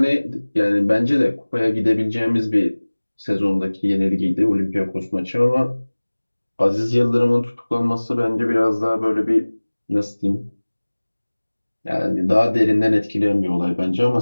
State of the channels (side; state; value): both; inverted; correlation -1.00